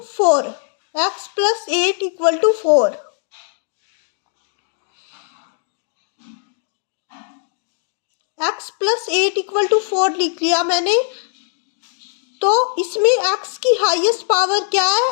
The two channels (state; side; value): silent; right; digital silence